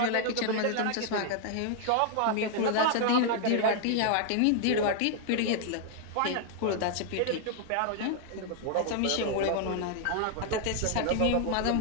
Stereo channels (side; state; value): both; different; correlation 0.00